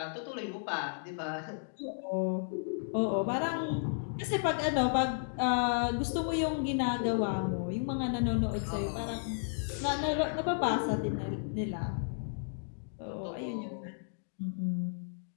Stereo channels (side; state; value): right; silent; digital silence